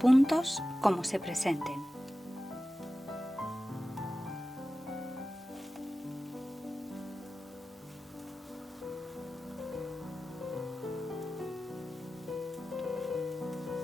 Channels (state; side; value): normal; both; correlation 0.94